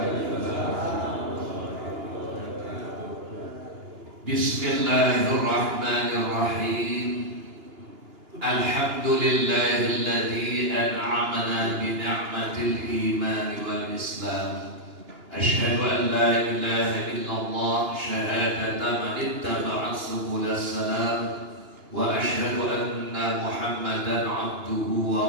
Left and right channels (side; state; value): left; late; 2.9 ms